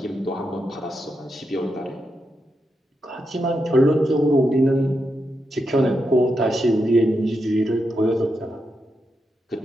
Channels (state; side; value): normal; both; correlation 0.85